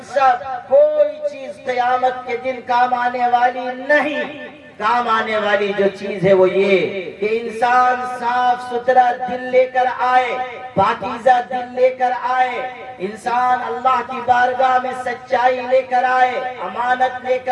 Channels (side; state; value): both; identical; correlation 1.00